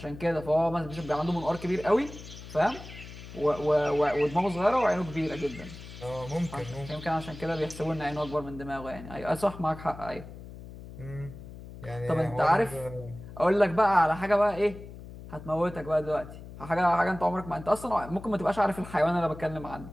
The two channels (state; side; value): noise; left; hum, 14 dB below the sound